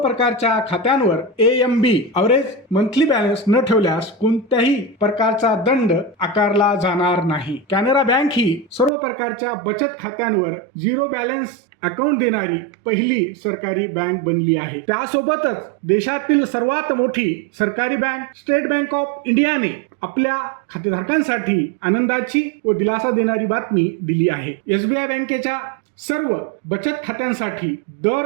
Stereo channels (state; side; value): drops out; left; at 8.9 s